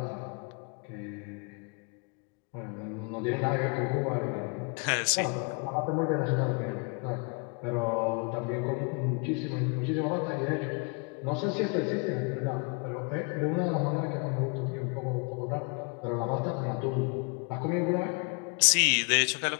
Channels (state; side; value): quieter; right; 35.5 dB